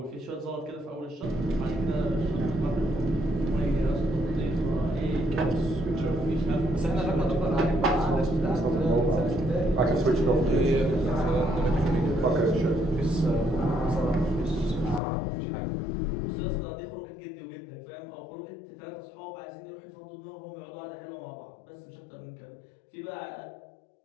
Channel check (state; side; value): drops out; right; at 15.0 s